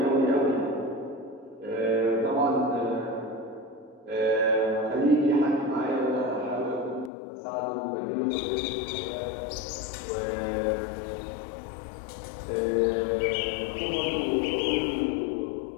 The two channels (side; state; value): right; drops out; at 7.1 s